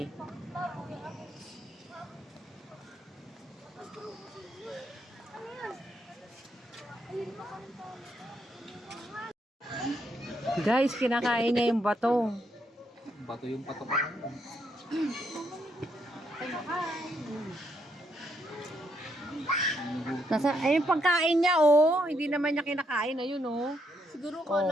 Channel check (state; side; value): normal; both; correlation 0.76